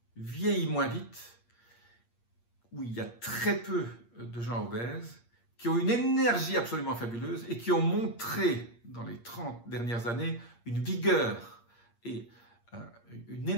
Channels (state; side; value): late; right; 8.6 ms